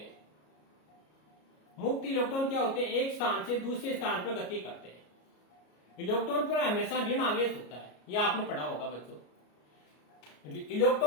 मुक्त इलेक्ट्रॉन क्या होते हैं? एक स्थान से दूसरे स्थान पर गति करते हैं। इलेक्ट्रॉन पर हमेशा ऋण आवेश होता है, यह आपने पढ़ा होगा बच्चों।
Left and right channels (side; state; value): right; late; 33 ms